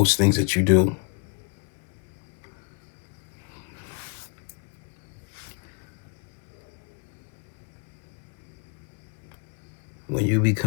things that you do. When you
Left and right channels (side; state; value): right; quieter; 35.2 dB